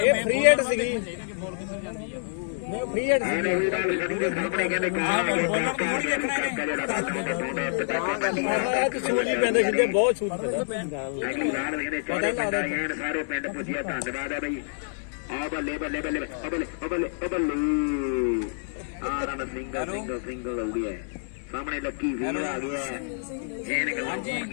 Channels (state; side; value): silent; right; 60 dB below the other